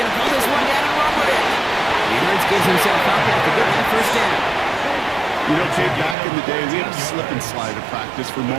to pull this one down and run with it. And Hurts gives himself up after getting that 1st down. You know, Kate, back in the day, we had a slip and slide at practice for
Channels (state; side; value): drops out; left; at 6.2 s